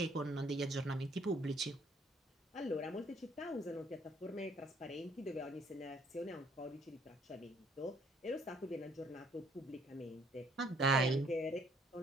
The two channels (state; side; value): normal; both; correlation 0.64